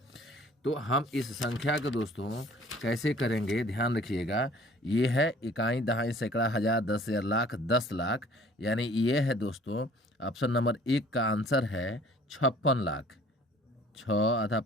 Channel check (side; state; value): both; normal; correlation 0.53